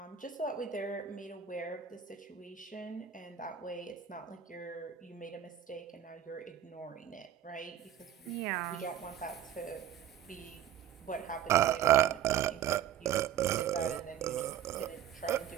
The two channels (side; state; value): left; quieter; 10.0 dB